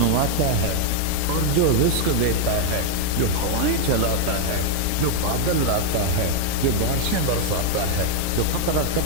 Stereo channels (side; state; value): both; different; correlation 0.00